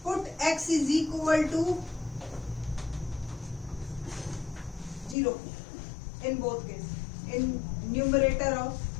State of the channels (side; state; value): right; drops out; at 5.2 s